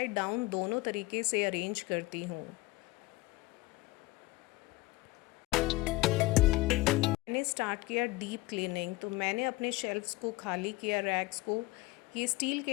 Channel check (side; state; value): right; quieter; 20.3 dB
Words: डाउन दोनों तरीके से अरेंज करती हूँ। मैंने स्टार्ट किया डीप क्लीनिंग, तो मैंने अपने शेल्फ्स को खाली किया, रैक्स को। ये स्टील